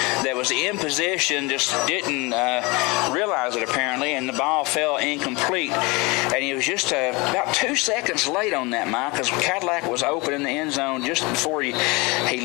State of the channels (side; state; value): right; quieter; 25.8 dB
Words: was in position, just didn't realize it apparently, and the ball fell incomplete. And he was just about 2 seconds late on that, Mike, because Cadillac was open in the end zone just before he